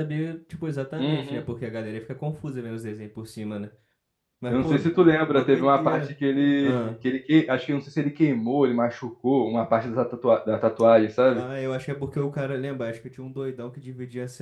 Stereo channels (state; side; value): identical; both; correlation 1.00